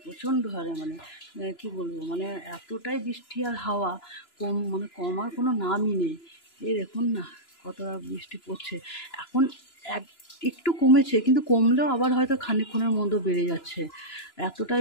প্রচণ্ড হারে কি বলবো, এতটাই বৃষ্টি আর হাওয়া কমার কোনো নামই নেই। এই দেখুন না কতটা বৃষ্টি পড়ছে। এখন একটু কমেছে, কিন্তু কমলেও আবার হয়তো খানিকক্ষণের মধ্যে বেড়ে যাচ্ছে,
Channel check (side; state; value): right; late; 2.9 ms